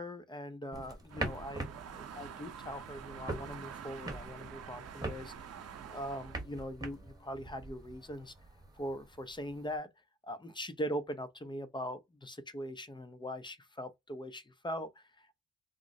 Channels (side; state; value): both; normal; correlation 0.54